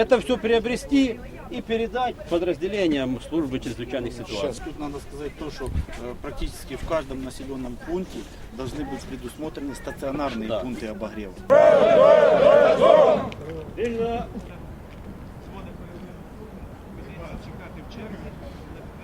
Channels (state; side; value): identical; both; correlation 1.00